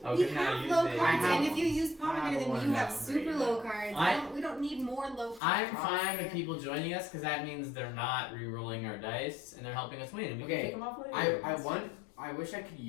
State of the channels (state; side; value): drops out; right; at 5.4 s